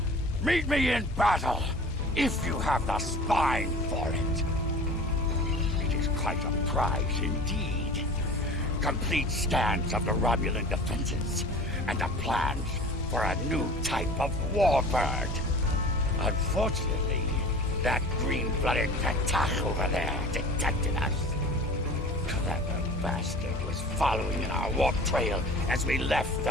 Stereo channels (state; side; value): normal; both; correlation 0.40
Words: Meet me in battle, if you have the spine for it. It is quite a prize indeed. Complete scans of the Romulan defenses, and a plan for a new type of warbird. Unfortunately, that green-blooded Patach over there detected us. Clever bastard was following in our warp trail as we left the